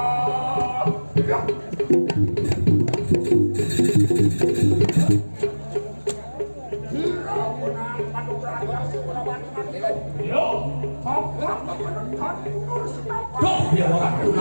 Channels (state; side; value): inverted; both; correlation -1.00